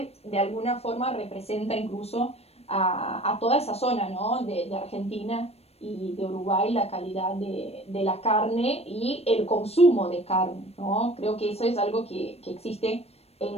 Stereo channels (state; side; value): late; right; 0.30 ms